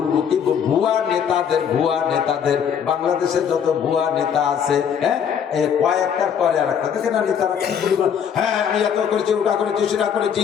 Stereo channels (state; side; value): quieter; right; 7.9 dB